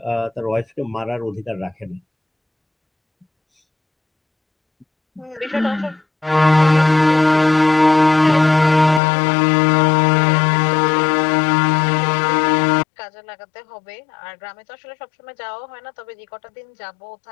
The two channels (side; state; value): right; drops out; at 9.0 s